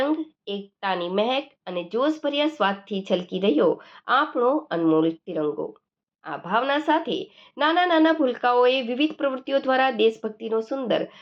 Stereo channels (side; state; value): both; identical; correlation 1.00